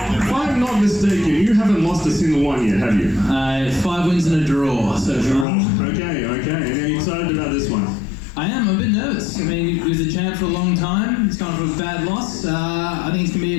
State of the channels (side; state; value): right; drops out; at 5.5 s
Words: If I'm not mistaken, you haven't lost a single one yet, have you? 5 wins and a draw, so draw. Okay. And are you excited about this one? I am, I'm a bit nervous. I mean, he was a champ for a long time. He's gone for a bad loss. I think it's going to